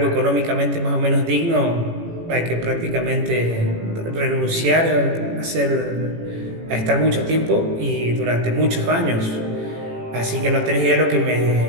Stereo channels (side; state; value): left; late; 18 ms